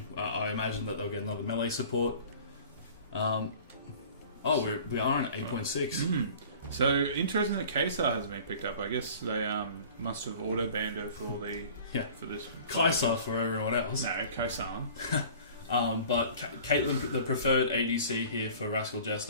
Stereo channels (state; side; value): inverted; both; correlation -0.45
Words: I imagine that they'll get another melee support. We are on 8.6. So interesting that Kaysar hasn't been picked up. I guess they must have auto banned her for for this. Kaysar for everyone else. No, Kaysar. But Caitlyn, the preferred ADC here for Rascal